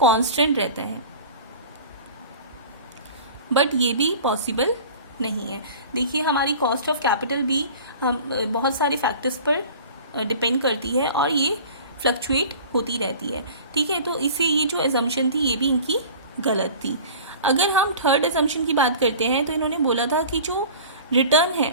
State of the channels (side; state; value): both; inverted; correlation -0.41